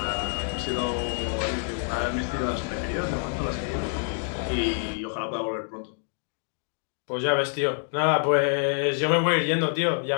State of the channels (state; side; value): silent; right; 56 dB below the other